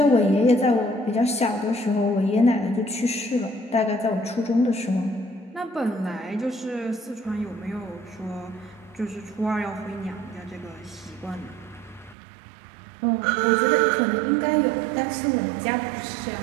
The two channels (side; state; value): left; drops out; at 12.2 s